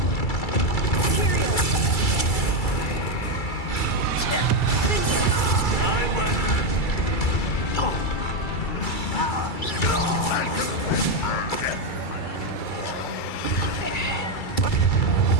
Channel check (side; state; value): right; late; 2.3 ms